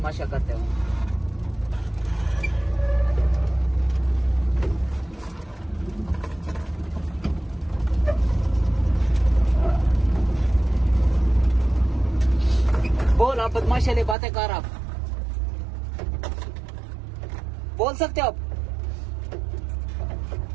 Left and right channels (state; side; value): drops out; left; at 14.2 s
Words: करते हो? बोल, आप बदमाशी वाली बातें कर। आप बोल सकते हो आप?